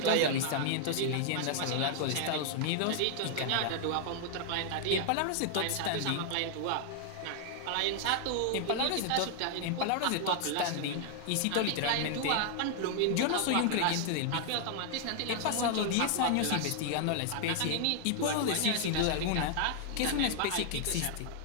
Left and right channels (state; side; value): different; both; correlation 0.00